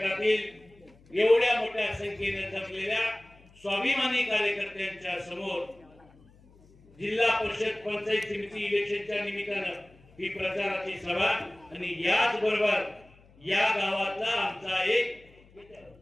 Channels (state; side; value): noise; left; hum, 27 dB below the sound